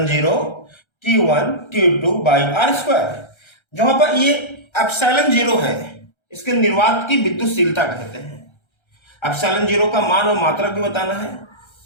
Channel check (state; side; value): late; right; 1.3 ms